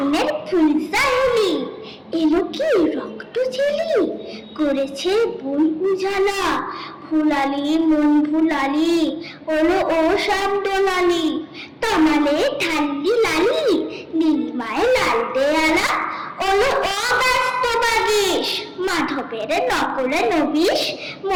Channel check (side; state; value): both; identical; correlation 1.00